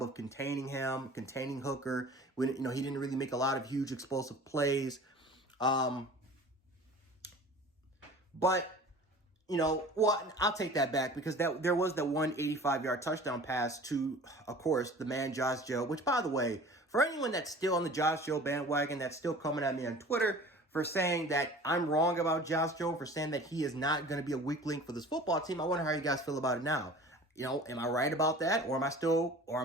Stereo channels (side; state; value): both; normal; correlation 0.42